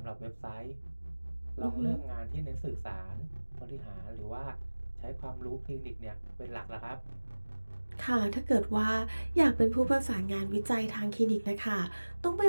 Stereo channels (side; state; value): both; inverted; correlation -1.00